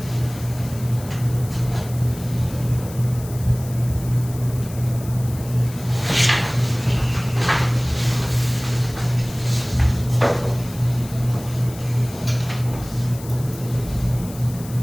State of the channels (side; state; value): left; noise; hiss, 17 dB below the sound